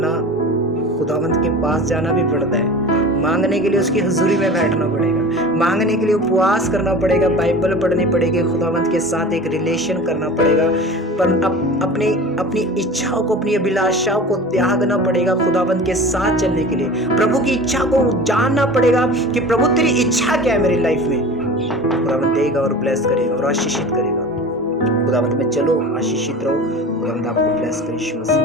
खुदावंद के पास जाना भी पड़ता है, मांगने के लिए उसकी हुजूरी में बैठना पड़ेगा, मांगने के लिए उपवास करना पड़ेगा, बाइबल पढ़नी पड़ेगी, खुदावंद के साथ एक रिलेशन करना पड़ेगा, पर अपनी इच्छाओं को, अपनी अभिलाषाओं को त्यागना पड़ेगा खुदावंद के साथ चलने के लिए। प्रभु की इच्छा को जानना पड़ेगा कि प्रभु तेरी इच्छा क्या है मेरी लाइफ में। खुदावंद देगा और ब्लेस करेगा और आशीषित करेगा। खुदावंद में चलो, आशीषित रहो, खुदावंद आपको ब्लेस करे यीशु मसीह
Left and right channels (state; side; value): normal; both; correlation 0.37